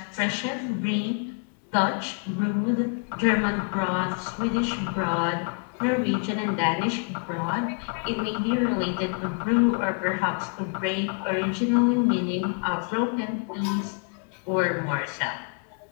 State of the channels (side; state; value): right; quieter; 39.7 dB